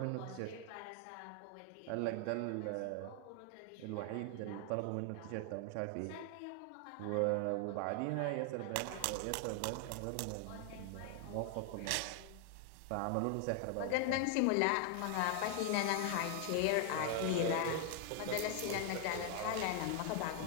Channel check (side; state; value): both; different; correlation 0.00